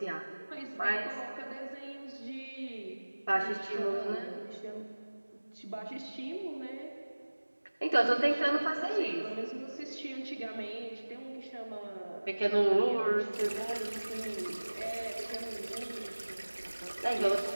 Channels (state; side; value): inverted; both; correlation -1.00